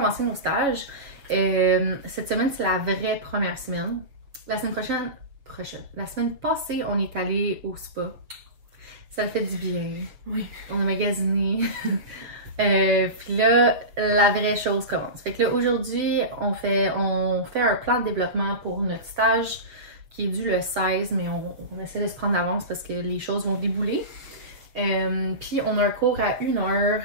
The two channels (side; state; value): left; late; 6.8 ms